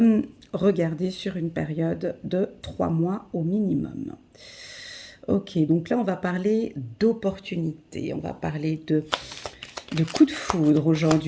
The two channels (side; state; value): both; identical; correlation 1.00